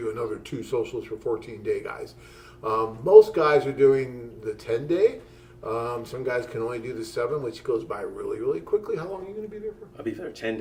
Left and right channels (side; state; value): both; identical; correlation 1.00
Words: another 2 socials for 14-day guys. Most guys are doing the 10-day. Some guys can only do the 7, which goes by really, really quickly. How long are you going to be there for? I'll be there 10